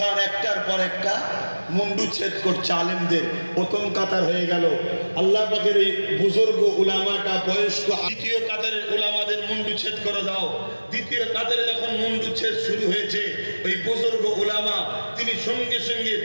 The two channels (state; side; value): inverted; both; correlation -1.00